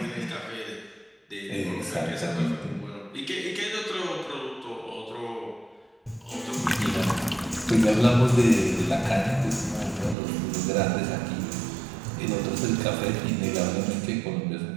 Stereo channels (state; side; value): drops out; left; at 10.2 s